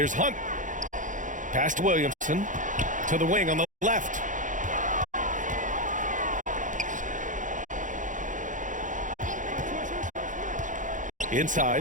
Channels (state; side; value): late; left; 0.37 ms